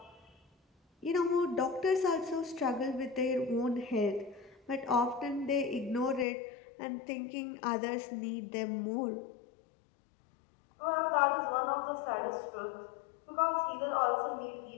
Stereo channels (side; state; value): right; drops out; at 6.2 s